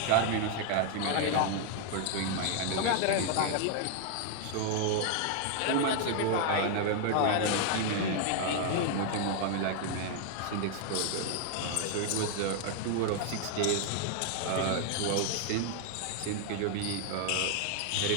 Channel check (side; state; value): both; different; correlation 0.00